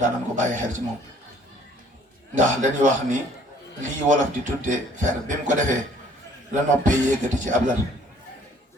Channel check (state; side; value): normal; both; correlation 0.58